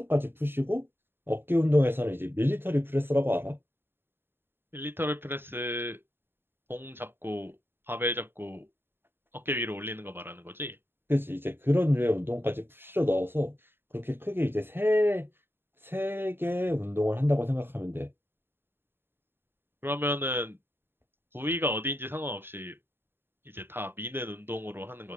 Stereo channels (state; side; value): late; left; 0.11 ms